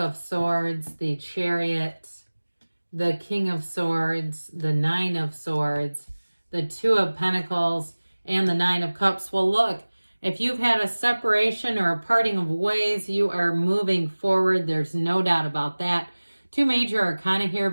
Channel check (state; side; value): inverted; both; correlation -1.00